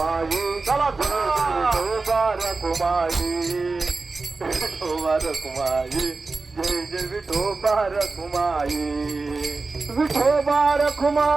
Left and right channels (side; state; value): left; quieter; 3.8 dB